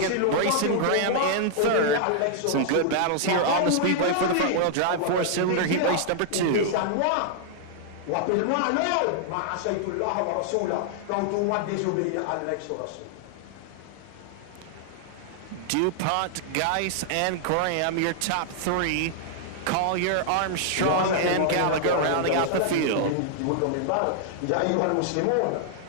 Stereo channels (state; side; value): different; both; correlation -0.01